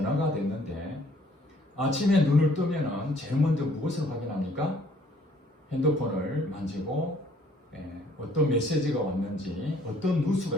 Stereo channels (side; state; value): both; normal; correlation 0.61